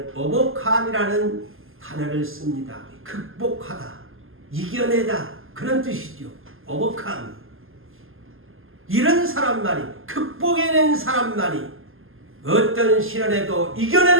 overcome이라는 단어를 씁니다. 극복하다, 이겨내다 그런 뜻이죠. overcome. 이런 사람만이, 극복해낸 사람만이, 어떤 시련에도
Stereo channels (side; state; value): left; late; 0.60 ms